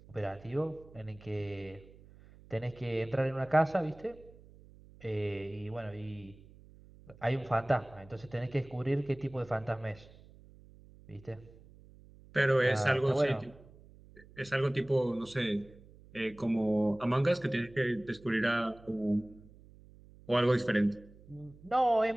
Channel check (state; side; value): noise; right; hum, 23 dB below the sound